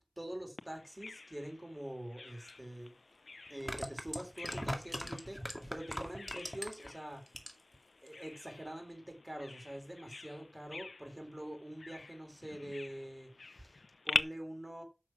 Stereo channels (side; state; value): both; normal; correlation 0.97